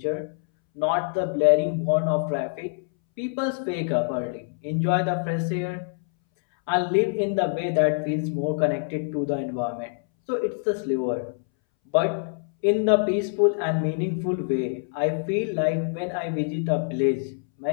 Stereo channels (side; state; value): right; silent; 62 dB below the other